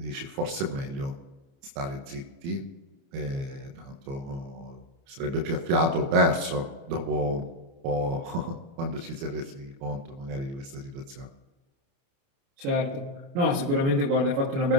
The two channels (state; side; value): late; left; 29 ms